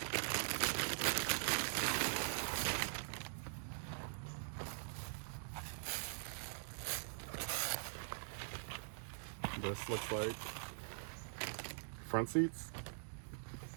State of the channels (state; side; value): silent; left; digital silence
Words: This looks like front seats.